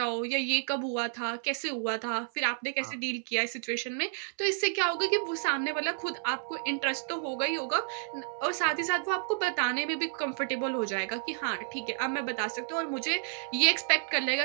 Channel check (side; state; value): left; silent; 57 dB below the other